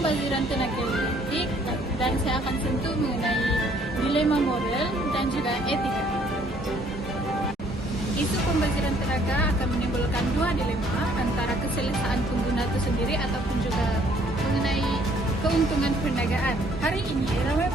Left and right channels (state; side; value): normal; both; correlation 0.62